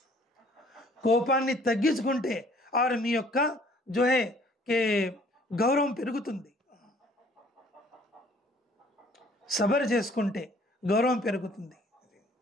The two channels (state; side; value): normal; both; correlation 0.57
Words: కోపాన్ని తగ్గించుకుంటే ఆరు మీ యొక్క గౌరవం పెరుగుతుంది. సబర్ చేసుకుంటే గౌరవం పెరుగుతుంది.